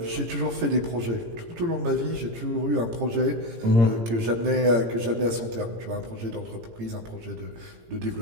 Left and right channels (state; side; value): late; left; 18 ms